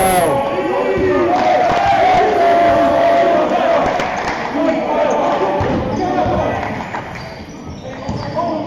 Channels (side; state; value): both; identical; correlation 1.00